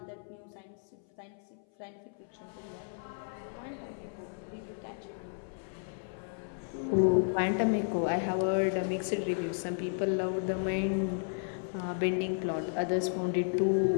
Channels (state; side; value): silent; right; 56 dB below the other